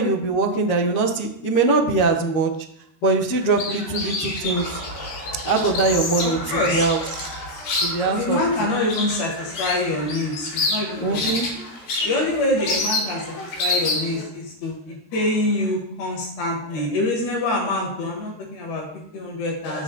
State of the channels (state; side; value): late; right; 13 ms